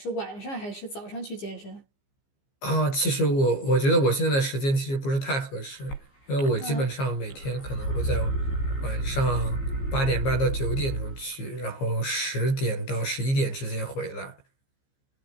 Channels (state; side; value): late; right; 15 ms